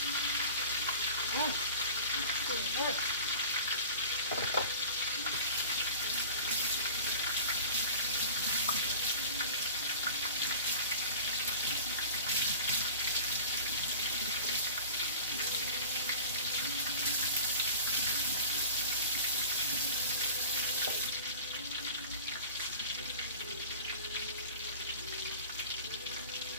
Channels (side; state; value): both; inverted; correlation -0.39